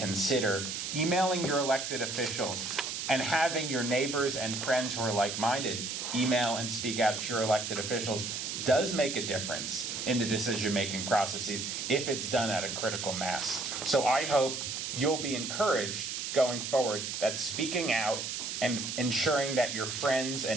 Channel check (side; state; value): right; noise; hiss, 4 dB below the sound